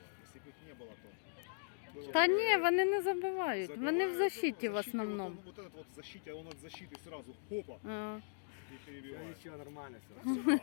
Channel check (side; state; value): right; silent; digital silence